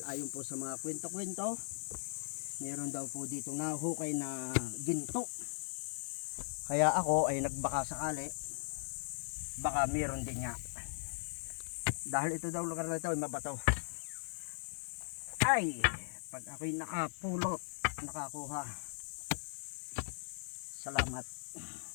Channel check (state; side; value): silent; right; 52 dB below the other